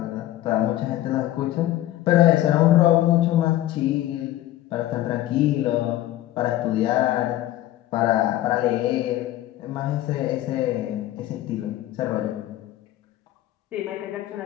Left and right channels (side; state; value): right; quieter; 14.4 dB